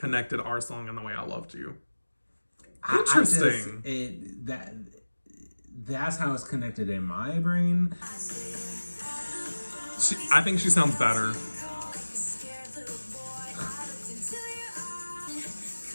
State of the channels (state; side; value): inverted; both; correlation -1.00